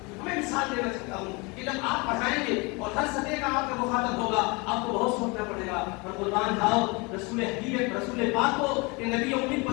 میں مثال دینا چاہتا ہوں کہ جب آپ پڑھائیں گے اور ہر سطح کا آپ کا مخاطب ہوگا، آپ کو بہت سوچنا پڑے گا، اور قربان جاؤ رسول حبیب رسول پاک کو کہ نبی امید کو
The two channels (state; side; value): quieter; right; 27.9 dB